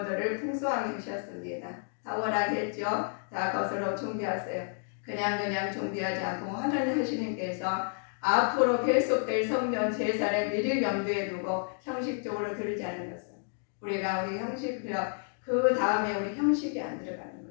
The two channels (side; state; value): right; silent; 57 dB below the other